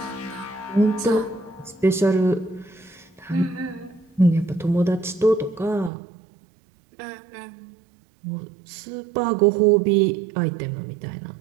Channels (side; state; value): left; drops out; at 5.9 s